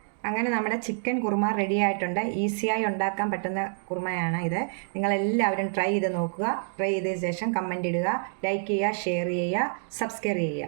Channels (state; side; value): silent; left; digital silence